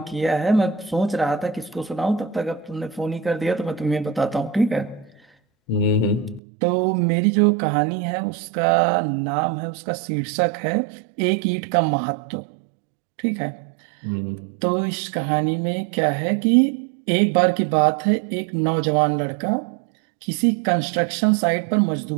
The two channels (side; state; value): left; drops out; at 6.4 s